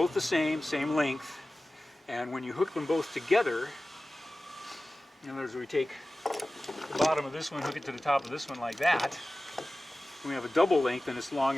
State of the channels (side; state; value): both; normal; correlation 0.96